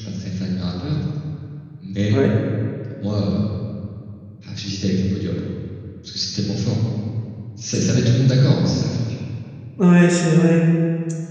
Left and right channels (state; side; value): identical; both; correlation 1.00